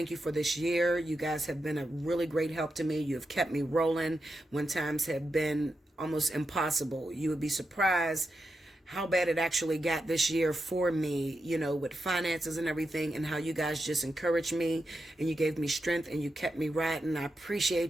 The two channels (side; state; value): both; normal; correlation 0.87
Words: you for this year. You guys have been a really great help to me. You have kept me rolling when times have been almost impossible. You would be surprised how bad it actually got this year for me, you know, with finances and everything, and how you guys just encouraged me and you gave me strength and you kept me riding. I